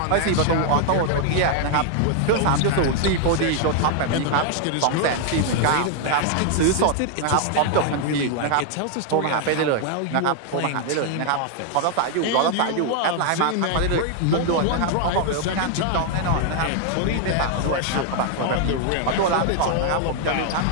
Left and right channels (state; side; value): different; both; correlation 0.00